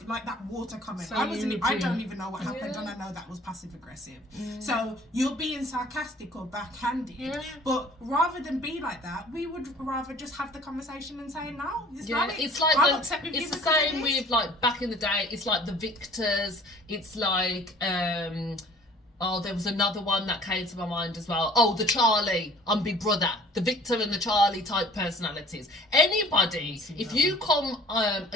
like that water comment. So I don't even know what happened, and I know that was passive aggressive. So you're being sarcastic or backhanded. But rather than be like that, we would rather just have the conversation and say, no, it's valid. It's like it's the same with, like, back in the day. It's like the victors. It's like oh, there was another one that came to my mind as well. Oh, the Charlie on Big Brother, the Victor and the Charlie type personalities. Anybody, if you come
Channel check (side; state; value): both; normal; correlation 0.50